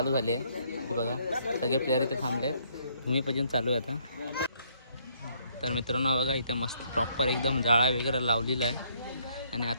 झाली आहे. हे बघा सगळे प्लेयर इथे थांबले, भूमिपूजन चालू आहे आता. तर मित्रांनो बघा इथे मस्त प्रॉपर एकदम जाळा वगैरे लावलेला आहे आणि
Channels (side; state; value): both; inverted; correlation -0.68